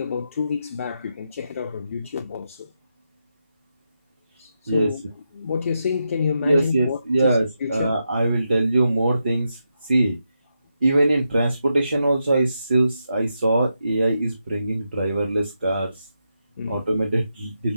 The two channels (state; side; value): inverted; both; correlation -0.85